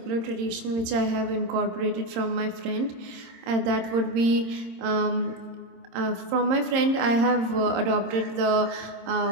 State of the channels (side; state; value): left; late; 26 ms